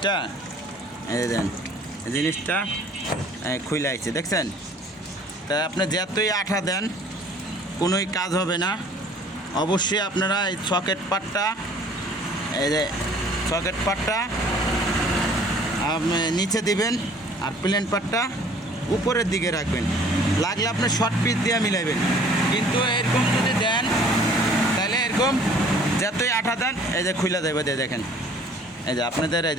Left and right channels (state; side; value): normal; both; correlation 0.53